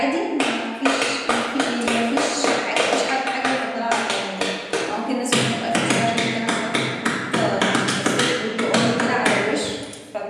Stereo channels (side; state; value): both; identical; correlation 1.00